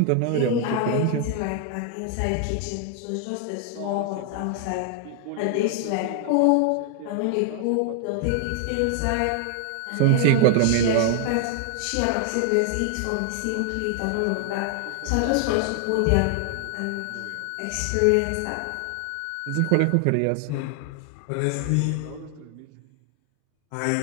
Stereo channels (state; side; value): different; both; correlation 0.00